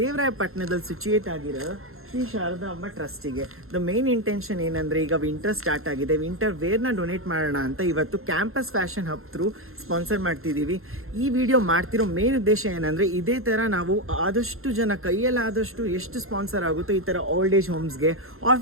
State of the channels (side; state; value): left; late; 0.61 ms